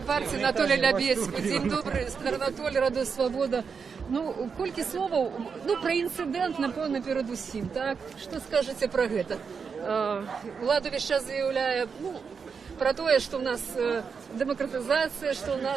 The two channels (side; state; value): left; quieter; 5.8 dB